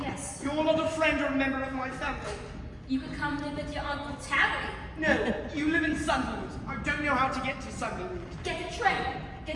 You're not a friend or a member of my family. You could come live with your Uncle Terry. No, you live in Sunderland. I don't know how to get to Sunderland. Get the train.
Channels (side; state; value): both; identical; correlation 1.00